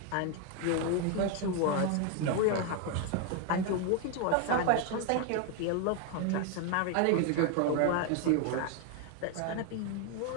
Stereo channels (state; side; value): different; both; correlation 0.01